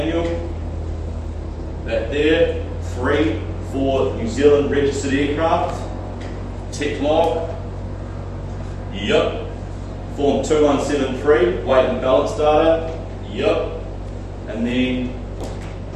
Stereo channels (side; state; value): both; identical; correlation 1.00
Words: That there. 3, for New Zealand registered aircraft. Tech log. Yep. Form 2173, weight and balance data. Yep. And then